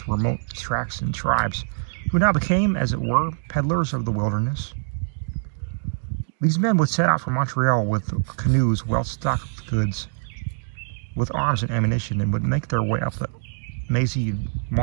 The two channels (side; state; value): left; silent; digital silence